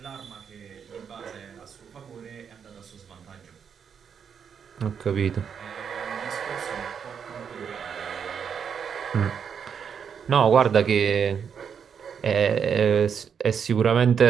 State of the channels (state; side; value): quieter; left; 7.2 dB